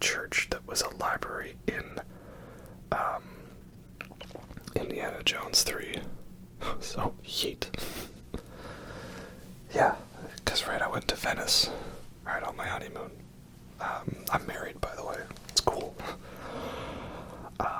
church that was a library in Indiana Jones 3. So, yeet. Yeah, because right, I went to Venice, right, on my honeymoon. I'm married, by the way. It's cool.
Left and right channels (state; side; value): identical; both; correlation 1.00